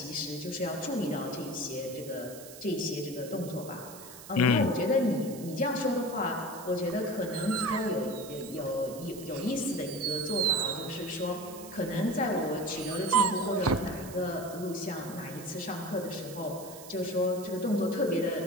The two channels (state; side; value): noise; right; hiss, 15 dB below the sound